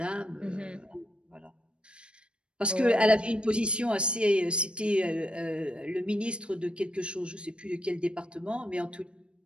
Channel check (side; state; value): left; late; 0.056 ms